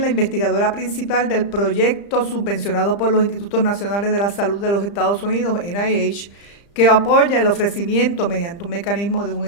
la investigadora principal del proyecto subvencionado por los Institutos Nacionales de la Salud de los Estados Unidos, NIH, que apoya el ofrecimiento mediante un mecanismo de un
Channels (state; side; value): late; right; 35 ms